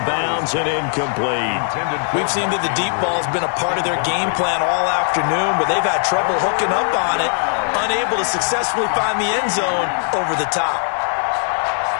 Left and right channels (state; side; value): silent; right; digital silence